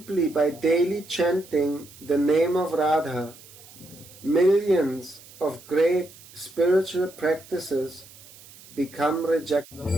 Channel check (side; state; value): right; noise; hiss, 21 dB below the sound